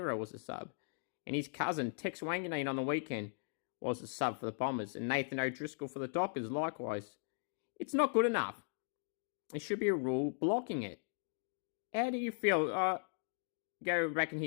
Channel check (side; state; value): right; silent; digital silence